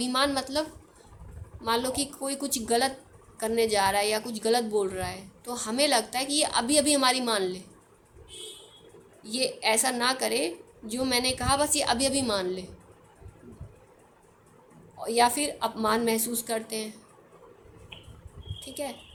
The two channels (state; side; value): identical; both; correlation 1.00